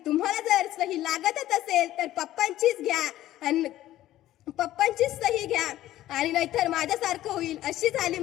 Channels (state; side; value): quieter; right; 14.1 dB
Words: जर सही लागतच असेल तर पप्पांचीच घ्या आणि पप्पांचीच सही घ्या आणि नाहीतर माझ्यासारखं होईल. अशी झाली